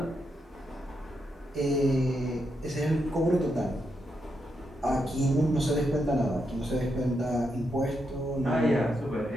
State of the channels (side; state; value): both; normal; correlation 0.82